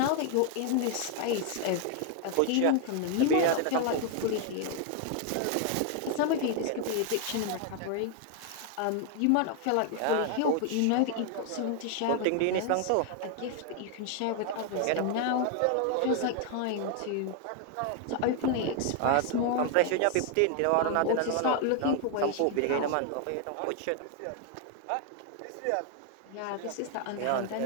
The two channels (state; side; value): different; both; correlation 0.00